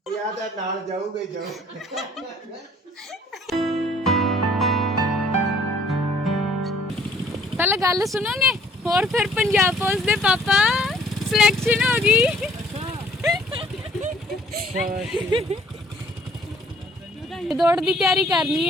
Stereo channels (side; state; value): both; normal; correlation 0.58